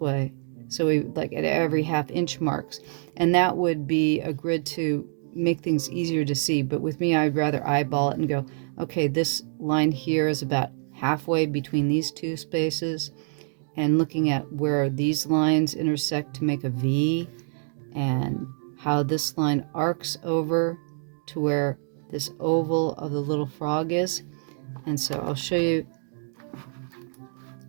So we like at every ½ inch marks. And that would be a grid to make things easier to see. But with me, I'd rather eyeball it and go, okay, this line here is about halfway between these two spaces, and looking at where these lines intersect to make a V, and how this line arcs over to where this oval of the little frog is. And so I'll show you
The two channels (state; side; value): silent; left; 61 dB below the other